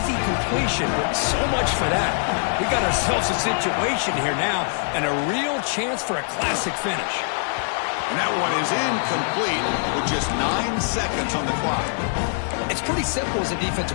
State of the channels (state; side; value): silent; right; 63 dB below the other